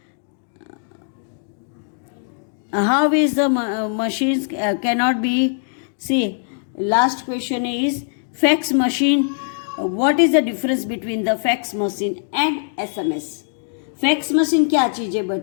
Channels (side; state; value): right; silent; digital silence